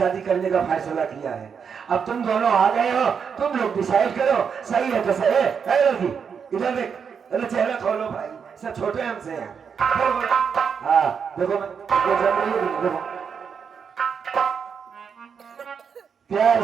करने का फैसला किया है। अब तुम दोनों आ गए हो। तुम लोग डिसाइड करो सही है तो सही है लड़की। इधर देख। अरे चेहरा खोलो भाई। सब छोटे हमसे हैं। हाँ देखो देखो प्यार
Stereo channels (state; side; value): quieter; left; 6.6 dB